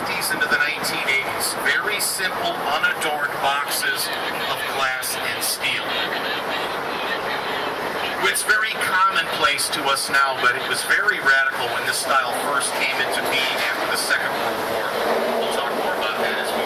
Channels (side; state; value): both; identical; correlation 1.00